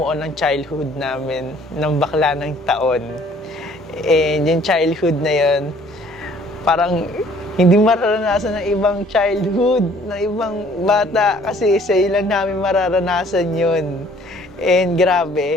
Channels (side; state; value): both; normal; correlation 0.57